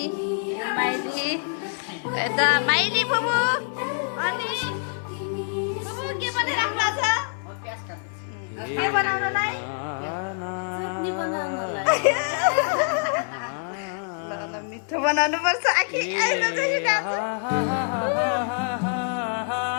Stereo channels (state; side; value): silent; right; 58 dB below the other